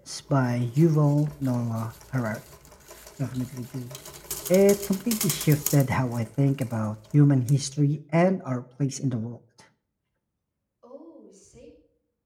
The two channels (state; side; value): identical; both; correlation 1.00